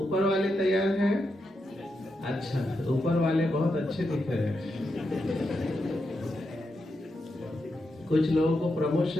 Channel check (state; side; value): normal; both; correlation 0.85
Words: वाले तैयार हैं? अच्छा, ऊपर वाले बहुत अच्छे दिख रहे हैं। कुछ लोगों को